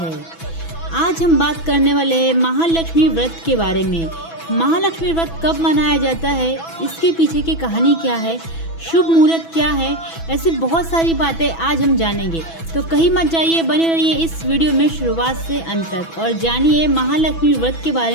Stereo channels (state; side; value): late; right; 6.1 ms